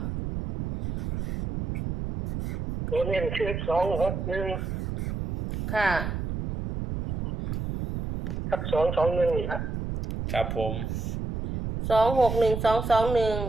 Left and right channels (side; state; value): right; noise; rumble, 4 dB below the sound